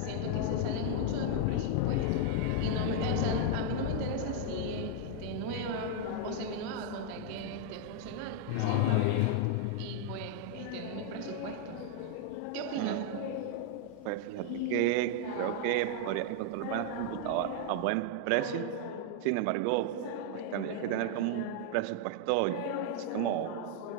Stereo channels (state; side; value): different; both; correlation 0.00